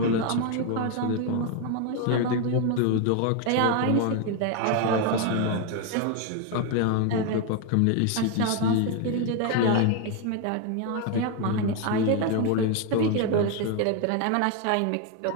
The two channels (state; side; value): different; both; correlation 0.01